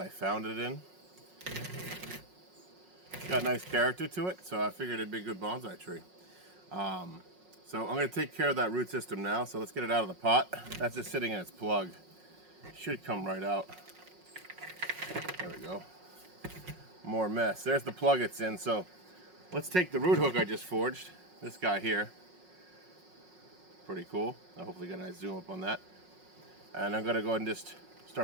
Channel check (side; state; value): left; late; 5.5 ms